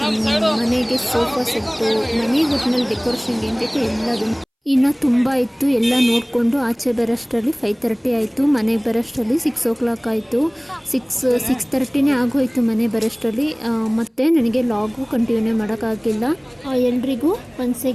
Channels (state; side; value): identical; both; correlation 1.00